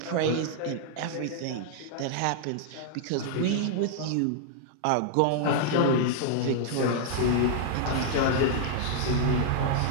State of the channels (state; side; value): different; both; correlation -0.01